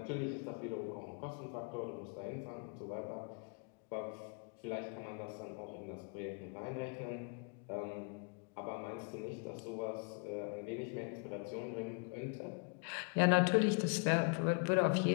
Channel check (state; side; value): quieter; right; 37.1 dB